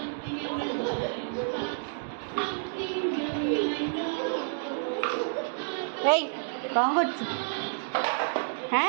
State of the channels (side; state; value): left; silent; digital silence